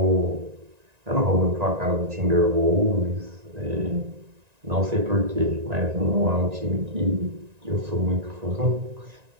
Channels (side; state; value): left; late; 1.9 ms